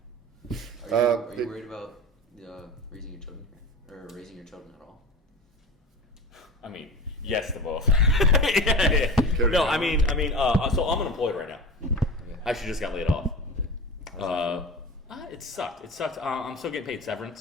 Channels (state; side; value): normal; both; correlation 0.31